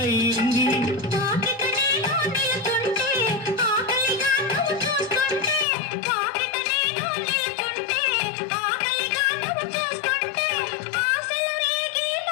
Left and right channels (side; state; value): right; drops out; at 5.7 s